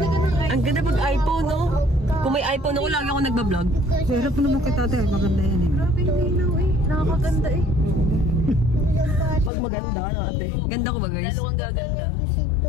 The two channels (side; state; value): right; drops out; at 9.5 s